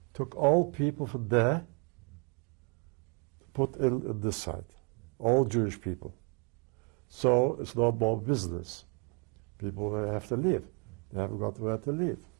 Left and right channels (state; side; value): quieter; left; 35.0 dB